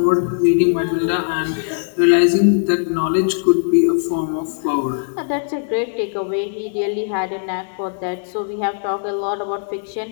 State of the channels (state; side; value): silent; right; digital silence